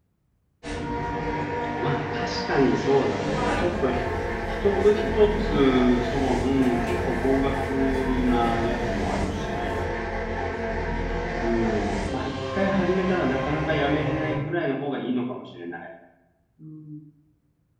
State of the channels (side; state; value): both; identical; correlation 1.00